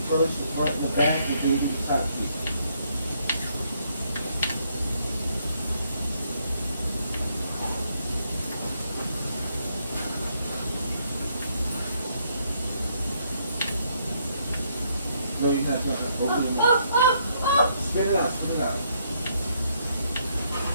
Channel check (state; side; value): inverted; both; correlation -0.72